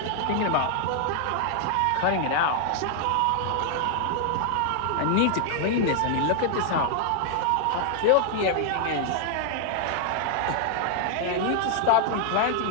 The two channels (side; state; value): both; different; correlation 0.00